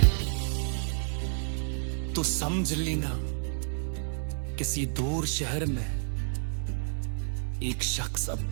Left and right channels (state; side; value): silent; left; 58 dB below the other